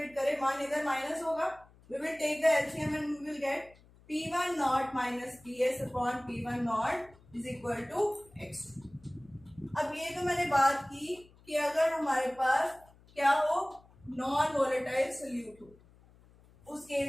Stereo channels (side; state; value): left; noise; hum, 27 dB below the sound